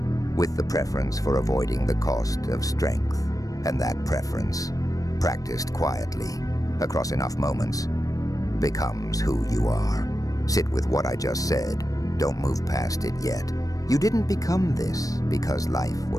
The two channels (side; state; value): right; late; 0.17 ms